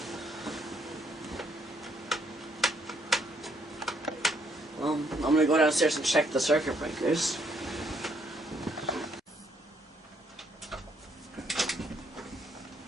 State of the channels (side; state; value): both; normal; correlation 0.70